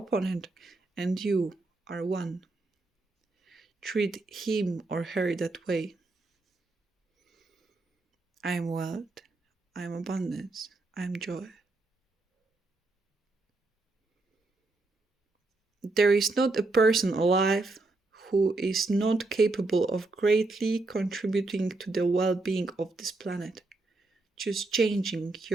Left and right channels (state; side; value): quieter; left; 3.2 dB